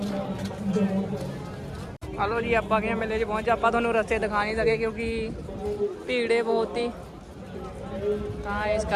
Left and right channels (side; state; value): both; identical; correlation 1.00